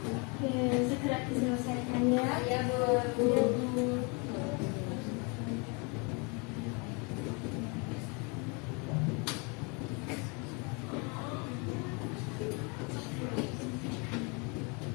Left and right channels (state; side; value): quieter; right; 31.8 dB